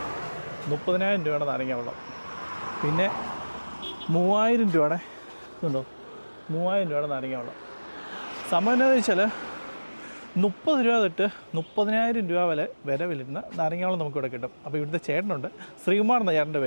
30,000 രൂപയുടെ നാരങ്ങ വെള്ളം. പിന്നെ 3,000 രൂപയുടെ ഇതുണ്ടോ, 3,000 രൂപയുടെ നാരങ്ങ വെള്ളം. സംഭവം എന്താണെന്ന് വെച്ചാൽ 30 രൂപ തൊട്ട് 30,000 രൂപ വില വരുന്ന നാരങ്ങാവെള്ളം നമുക്കിവിടെ കിട്ടും. അപ്പോൾ ഇവിടുത്തെ ചേട്ടനുണ്ട്, ശ്രീകുമാർ എന്ന ചേട്ടൻ്റെ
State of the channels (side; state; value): both; inverted; correlation -1.00